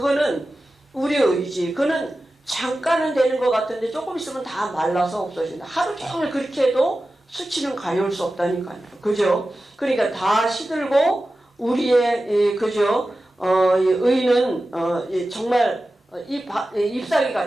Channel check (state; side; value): normal; both; correlation 0.94